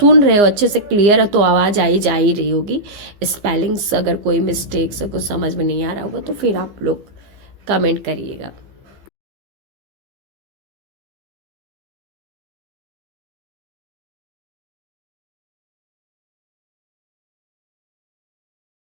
रहे हो अच्छे से क्लियर है तो आवाज़ जा ही रही होगी। स्पेलिंग्स अगर कोई मिस्टेक्स कुछ समझ में नहीं आ रहा होगा तो फिर आप लोग कमेंट करिएगा।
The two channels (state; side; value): late; left; 15 ms